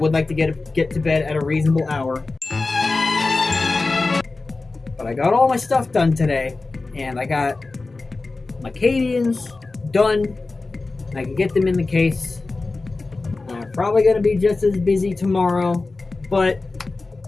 like to get to bed at a reasonable hour. But I got all my stuff done today, and I got my Cadians done. I can get them in the case. I'm probably going to be just as busy tomorrow, but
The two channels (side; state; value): right; quieter; 3.6 dB